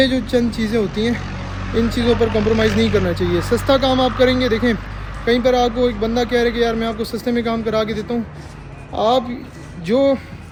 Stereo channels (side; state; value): both; identical; correlation 1.00